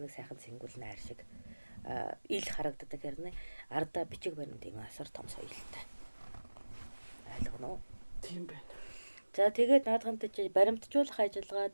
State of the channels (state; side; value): inverted; both; correlation -1.00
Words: нэг сайхан сэнгүүл найр шиг ил харагддаг хэрнээ ардаа бичиг баримт юм асар том соёлтой. Ойлгоно уу? Тийм байна. За тэгээд наадхантай чи баримтжуулах ажиллагаа